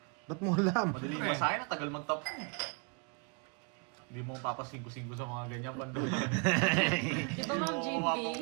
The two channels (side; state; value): left; quieter; 35.5 dB